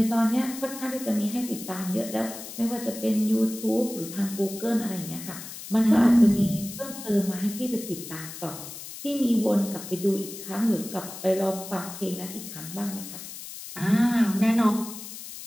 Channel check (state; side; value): noise; left; hiss, 11 dB below the sound